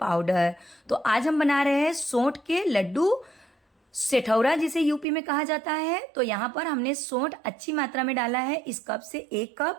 तो आज हम बना रहे हैं सौंठ के लड्डू, सेठौरा जिसे यूपी में कहा जाता है। तो यहाँ पर हमने सौंठ अच्छी मात्रा में डाला है, इस कप से 1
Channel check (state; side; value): drops out; left; at 5.1 s